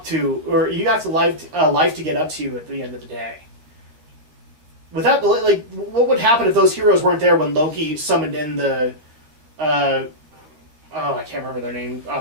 to, or you have a life to get up to at the end of the day. Without, what would happen if those heroes weren't there when Loki summoned in the, I can't remember their name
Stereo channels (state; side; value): late; left; 13 ms